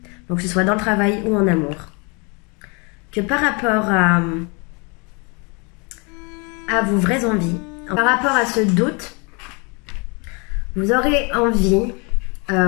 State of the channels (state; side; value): quieter; right; 32.0 dB